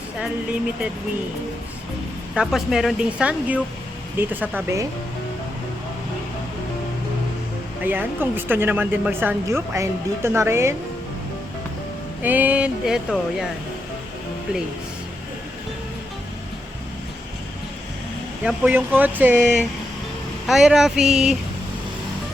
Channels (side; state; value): both; normal; correlation 0.84